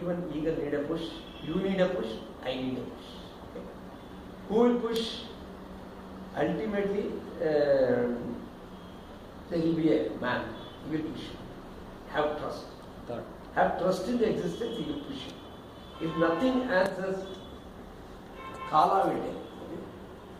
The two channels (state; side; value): identical; both; correlation 1.00